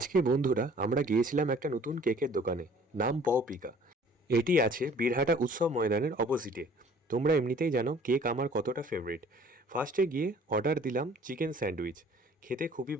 বন্ধুরা আমরা গিয়েছিলাম একটা নতুন কেকের দোকানে, নাম পপিকা। এটি আছে বীরহাটা উৎসব ময়দানের অপোজিটে। তোমরা এমনিতেই জানো কেক আমার কতটা ফেভারিট। ফার্স্টে গিয়ে অর্ডার দিলাম চিকেন স্যান্ডউইচ। খেতে খুবই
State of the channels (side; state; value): both; normal; correlation 0.53